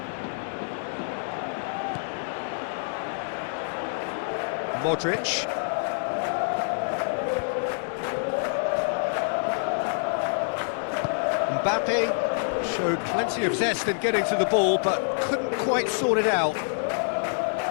Modric. Mbappe showed plenty of zest in getting to the ball, but couldn't quite sort it out.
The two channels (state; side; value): silent; right; digital silence